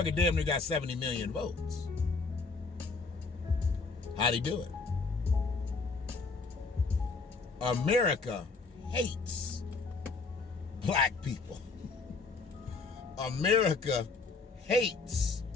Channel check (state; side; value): quieter; right; 4.2 dB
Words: damn near got 70 million votes. How'd he do it? America hates black people. America hates